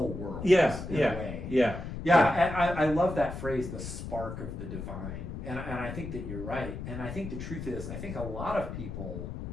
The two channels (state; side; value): noise; left; rumble, 7 dB below the sound